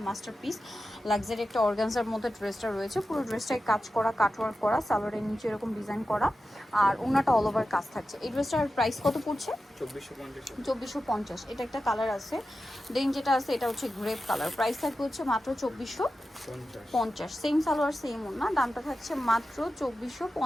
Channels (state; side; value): normal; both; correlation 0.92